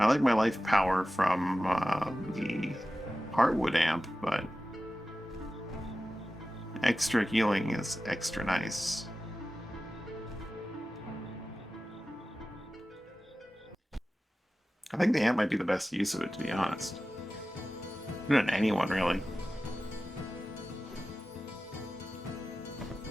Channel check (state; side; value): normal; both; correlation 0.95